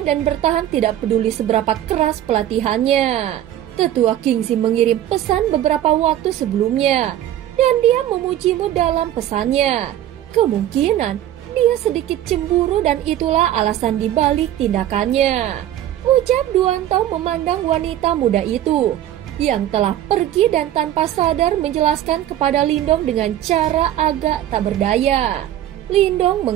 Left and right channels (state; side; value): quieter; left; 12.3 dB